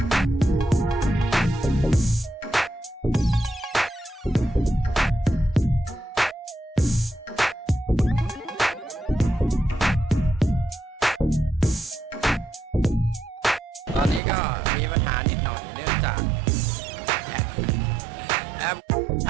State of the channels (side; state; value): left; drops out; at 14.2 s